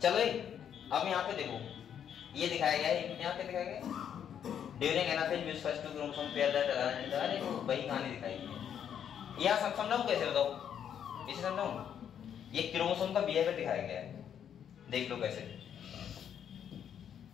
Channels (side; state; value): right; quieter; 8.9 dB